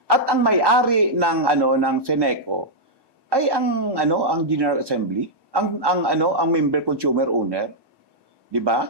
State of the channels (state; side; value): late; left; 1.1 ms